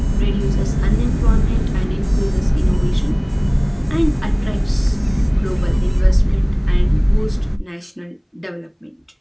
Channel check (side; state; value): both; identical; correlation 1.00